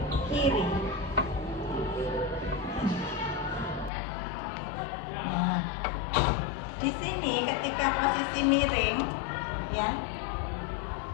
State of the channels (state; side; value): drops out; right; at 3.9 s